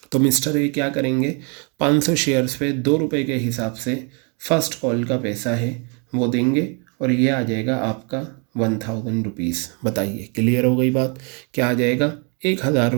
तो मिस्टर ए क्या करेंगे, 500 शेयर्स पे 2 रुपये के हिसाब से फ़र्स्ट कॉल का पैसा है वो देंगे, और ये आ जाएगा आपका 1,000 रुपीज़। बताइए, क्लियर हो गई बात। क्या आ जाएगा, 1,000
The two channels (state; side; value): quieter; left; 35.7 dB